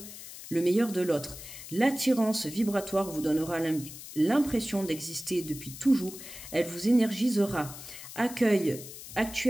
meilleur de l'autre. L'attirance vibratoire vous donnera l'impression d'exister depuis toujours. Elle vous énergisera. Accueille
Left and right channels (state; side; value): noise; left; hiss, 13 dB below the sound